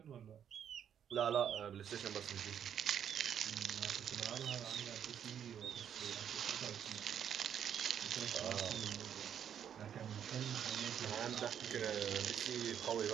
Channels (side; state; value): left; quieter; 8.9 dB